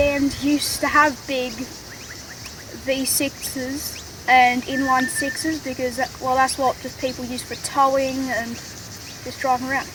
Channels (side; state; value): both; identical; correlation 1.00